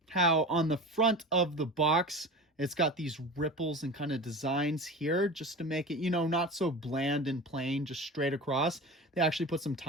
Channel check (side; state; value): both; normal; correlation 0.32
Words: how on the front of the box, it's got these ripples and kind of designs here just to make it, you know, not so bland and plain, just straight across. They actually put some